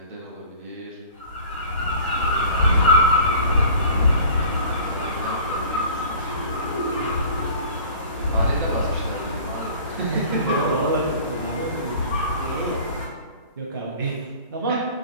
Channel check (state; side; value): inverted; both; correlation -0.44